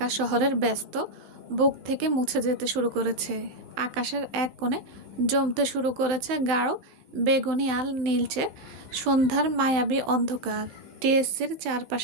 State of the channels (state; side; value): late; left; 16 ms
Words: শহরের ব্যস্ত বুক থেকে মুছে যেতে শুরু করেছে। আকাশের এক কোণে জমতে শুরু করেছে গাঢ় বেগুনি আল নীলচে সন্ধ্যার মায়াবী অন্ধকার। টিএসসির